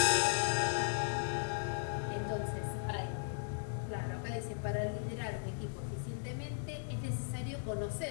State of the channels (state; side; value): silent; right; digital silence